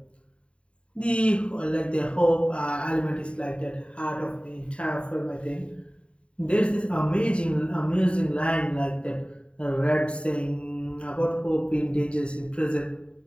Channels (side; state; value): right; late; 0.058 ms